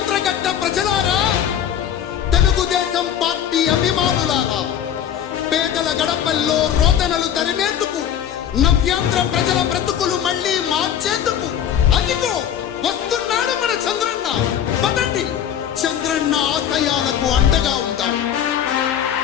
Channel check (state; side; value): quieter; right; 9.7 dB